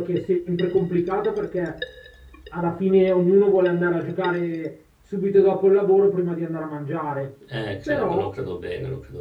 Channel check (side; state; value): both; identical; correlation 1.00